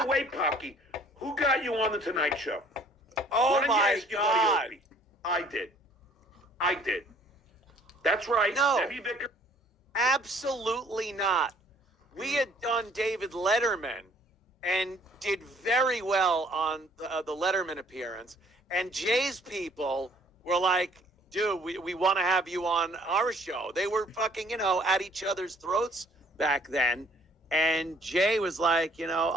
way, Pocky, who got you on the Tonight Show? Oh Why don't you my ask your buddy God. Opie? I did. That's right. No. Debbie Vickers. Absolutely not. We had done David Letterman and did very well on the Letterman appearance. And Jay's people were like, dude, we want to have you on our show. They were fucking, at each other's throats back then. And Jay was like,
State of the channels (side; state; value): both; normal; correlation 0.58